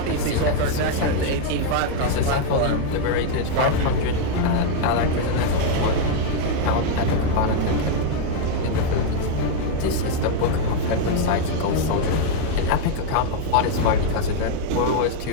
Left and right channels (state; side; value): different; both; correlation 0.00